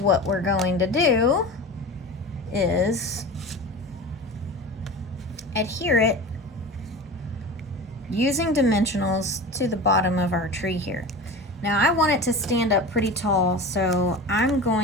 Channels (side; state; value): both; normal; correlation 0.32